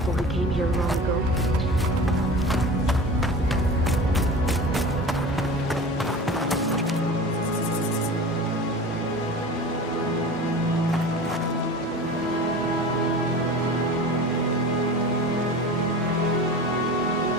who came here long ago.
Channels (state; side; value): normal; both; correlation 0.35